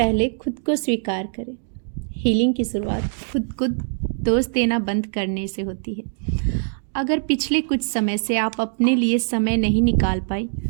खुद को स्वीकार करें। हीलिंग की शुरुआत खुद को दोष देना बंद करने से होती है। अगर पिछले कुछ समय से आप अपने लिए समय नहीं निकाल पाई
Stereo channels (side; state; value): left; silent; digital silence